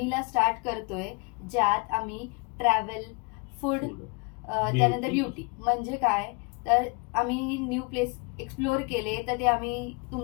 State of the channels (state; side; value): quieter; right; 32.0 dB